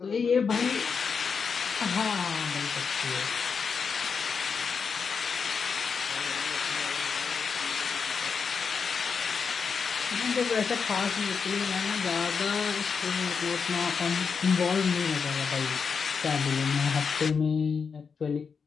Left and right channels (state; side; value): quieter; right; 5.8 dB